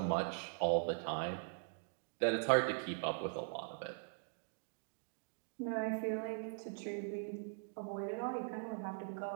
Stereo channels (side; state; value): left; silent; digital silence